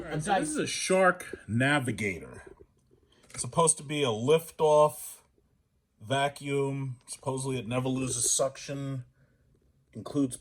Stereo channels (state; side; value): identical; both; correlation 1.00